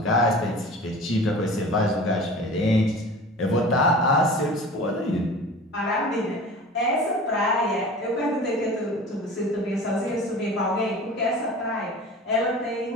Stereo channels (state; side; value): normal; both; correlation 0.39